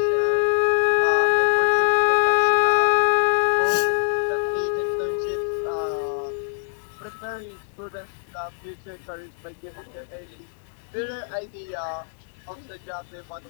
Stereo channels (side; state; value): right; silent; digital silence